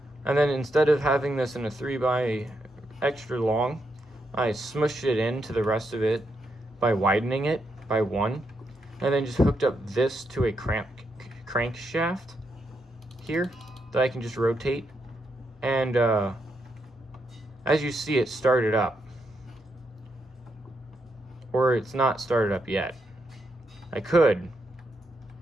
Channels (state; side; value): normal; both; correlation 0.81